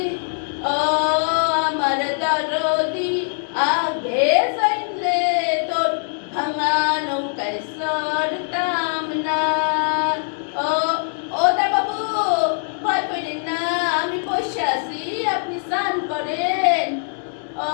ও আমার দরদি, আগে যাইলে তোর ভাঙা নৌকায় সরতাম না। ও ও দা বাবু, ভয় করেন না, আমি বসে আছি, আপনি স্নান করেন। ও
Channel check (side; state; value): right; silent; digital silence